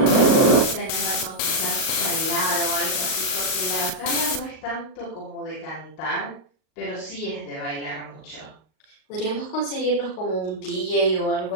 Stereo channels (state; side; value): late; right; 38 ms